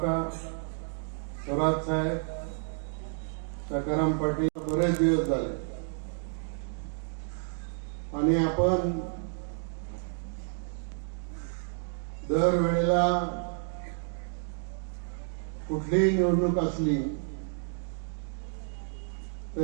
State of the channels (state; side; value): silent; left; 57 dB below the other